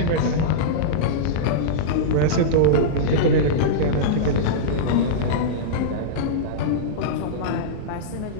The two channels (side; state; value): both; different; correlation -0.05